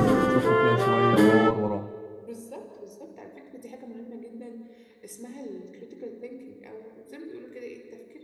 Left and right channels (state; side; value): identical; both; correlation 1.00